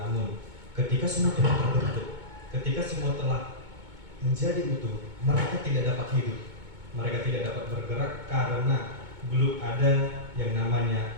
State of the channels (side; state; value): left; late; 2.2 ms